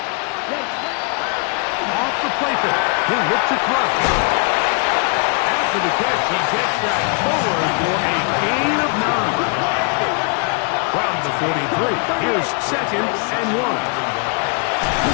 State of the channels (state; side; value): quieter; right; 36.3 dB